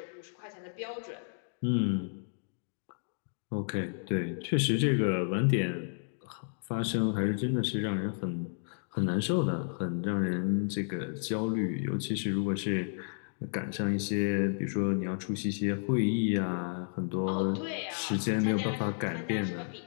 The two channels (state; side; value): silent; right; digital silence